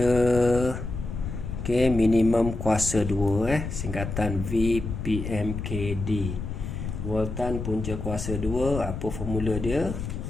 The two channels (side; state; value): left; noise; rumble, 6 dB below the sound